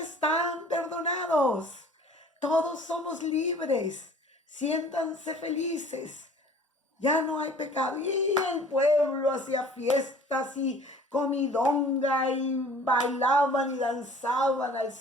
perdonados, todos somos libres, siéntanse felices, ya no hay pecado. Y el pueblo hacía fiestas y comidonga y bailaban y danzaban al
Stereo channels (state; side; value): normal; both; correlation 0.49